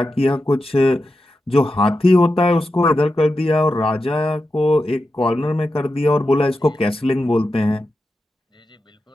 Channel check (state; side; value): normal; both; correlation 0.90